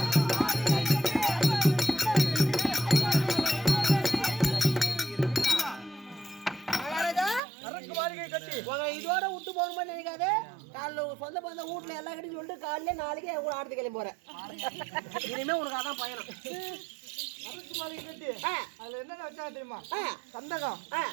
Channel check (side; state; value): left; drops out; at 7.4 s